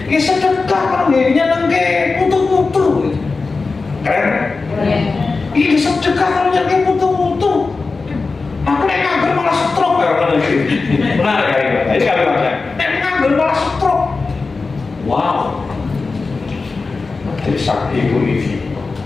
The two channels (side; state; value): right; quieter; 4.1 dB